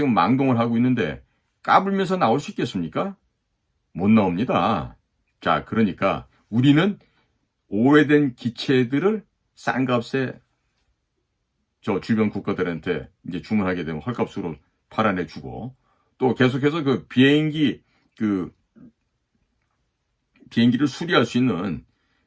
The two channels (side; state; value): both; identical; correlation 1.00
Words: 망동을 하고 있는데 까불면서 나올 수 있겠습니까? 못 나옵니다. 자, 그러니까 우리는 오래된 기체들을 싼 값에 저 주변 국가들한테 이제 주문하게 되면 헐값으로 팔아내주고 또 계속해서 그 비행기를 수리할 수 있는